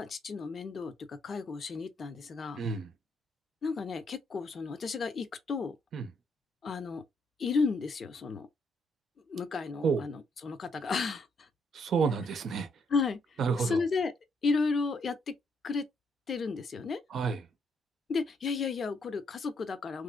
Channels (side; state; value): both; normal; correlation 0.73